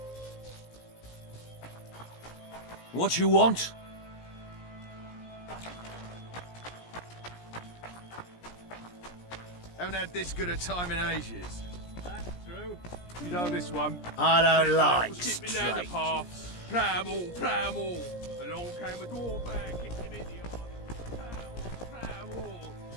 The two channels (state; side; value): late; right; 17 ms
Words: What you want? Haven't had this good a time in ages. That's true. You know this one. I don't like Skipping down the straight. path. Plough 'em all, plough 'em all. Along came a dwarf man, kicked him in the eye. Plough 'em all.